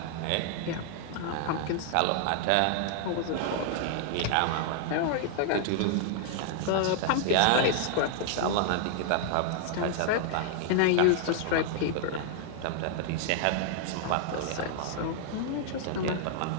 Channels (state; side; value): different; both; correlation -0.01